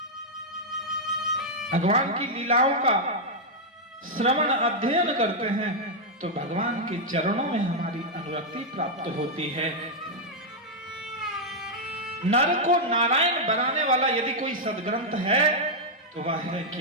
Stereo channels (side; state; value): both; normal; correlation -0.03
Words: भगवान की लीलाओं का श्रवण अध्ययन करते हैं तो भगवान के चरणों में हमारी अनुरक्ति प्राप्त होती है। नर को नारायण बनाने वाला यदि कोई सदग्रंथ है तो वह है